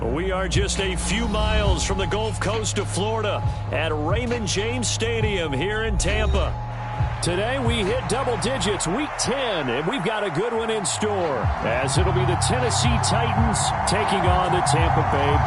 We are just a few miles from the Gulf Coast of Florida at Raymond James Stadium here in Tampa. Today we hit double digits, week 10, and we've got a good one in store, as it'll be the Tennessee Titans taking on the Tampa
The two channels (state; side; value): identical; both; correlation 1.00